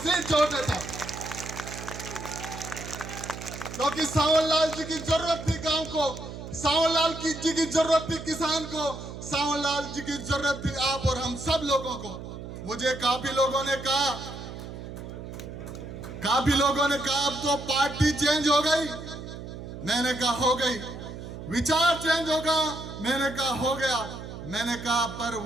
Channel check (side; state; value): right; noise; hum, 10 dB below the sound